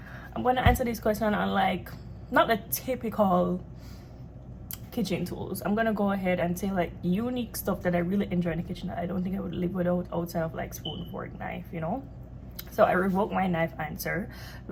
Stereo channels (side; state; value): both; identical; correlation 1.00